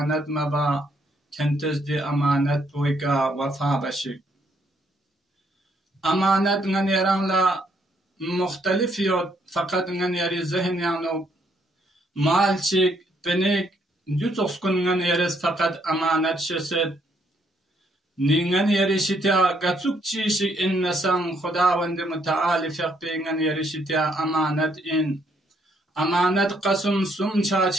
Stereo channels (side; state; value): both; normal; correlation 0.71